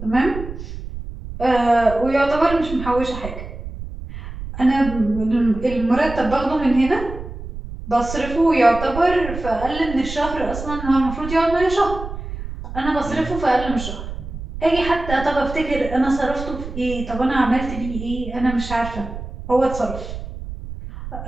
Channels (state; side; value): noise; right; rumble, 10 dB below the sound